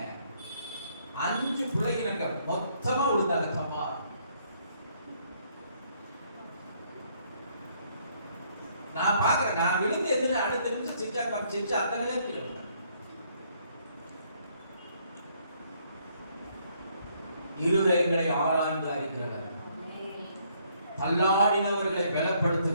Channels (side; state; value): both; inverted; correlation -0.68